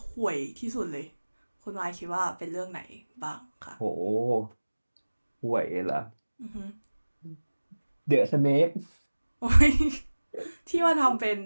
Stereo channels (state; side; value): inverted; both; correlation -1.00